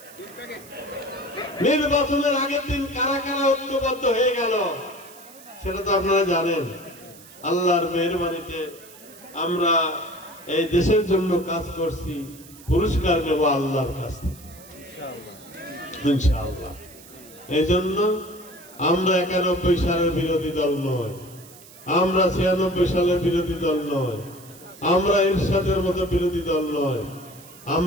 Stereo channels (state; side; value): noise; right; hiss, 21 dB below the sound